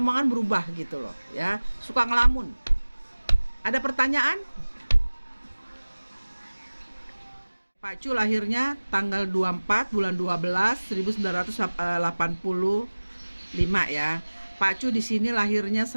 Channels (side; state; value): both; inverted; correlation -1.00